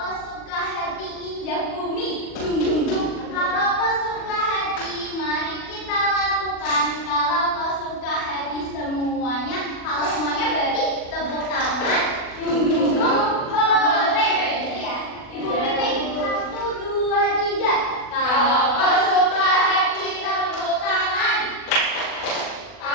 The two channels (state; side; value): late; right; 40 ms